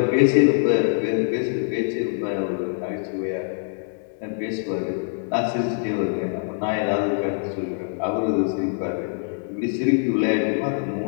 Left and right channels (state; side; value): silent; right; digital silence